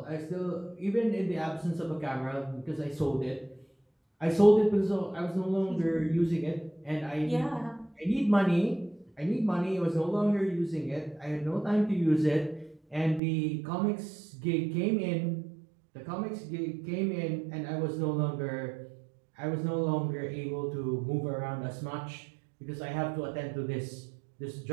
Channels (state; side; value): drops out; left; at 13.2 s